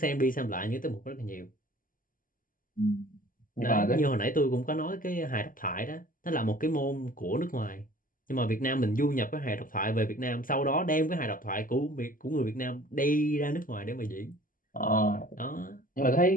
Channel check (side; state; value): right; late; 0.40 ms